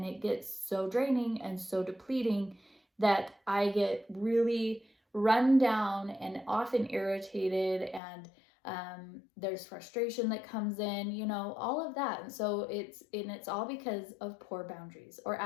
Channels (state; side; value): drops out; right; at 8.0 s